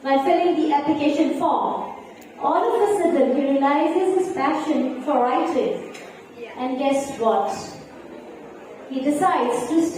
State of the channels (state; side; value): identical; both; correlation 1.00